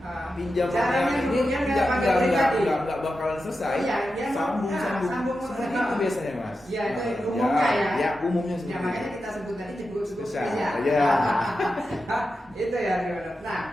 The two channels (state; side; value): normal; both; correlation 0.90